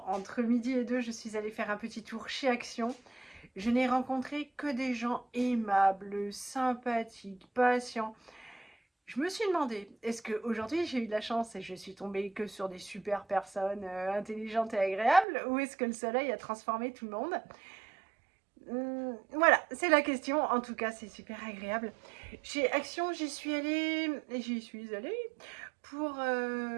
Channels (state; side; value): drops out; left; at 15.2 s